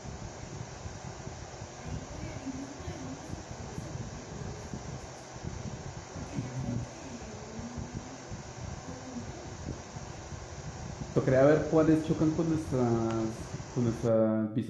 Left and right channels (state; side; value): identical; both; correlation 1.00